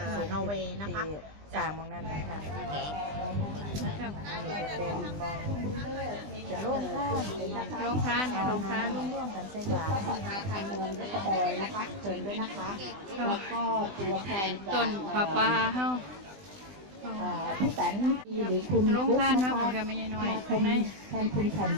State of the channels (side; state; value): left; late; 20 ms